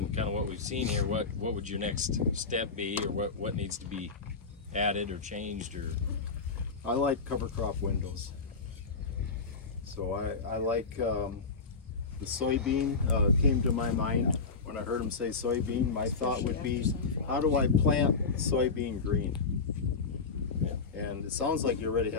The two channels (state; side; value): quieter; right; 4.6 dB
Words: kind of what we've seen here, what would your next step be, or what needs to be added or changed, or? I like cover crop windows. So I like the soybean came to my mind when I heard him say soybean. My thought would be, how do I plant soybean green? And it sounds like you already